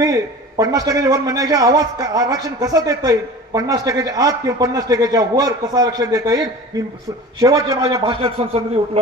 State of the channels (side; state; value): both; normal; correlation 0.38